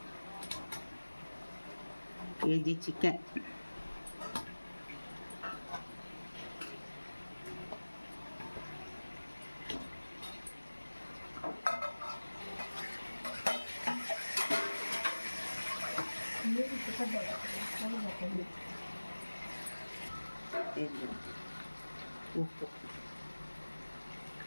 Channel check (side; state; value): both; inverted; correlation -1.00